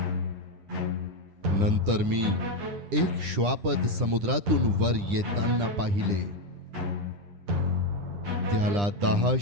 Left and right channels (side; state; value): left; late; 9.9 ms